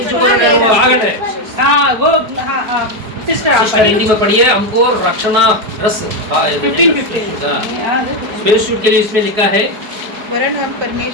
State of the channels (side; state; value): left; late; 4.7 ms